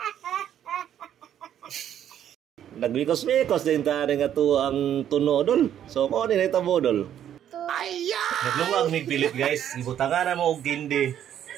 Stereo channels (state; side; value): quieter; left; 10.3 dB